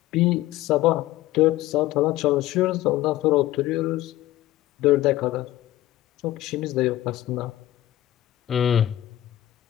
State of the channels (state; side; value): quieter; right; 14.9 dB